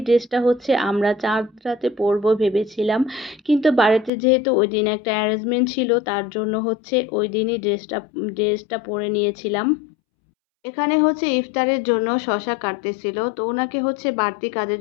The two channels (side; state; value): right; drops out; at 4.1 s